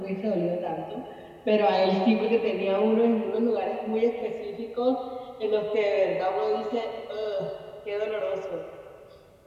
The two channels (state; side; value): identical; both; correlation 1.00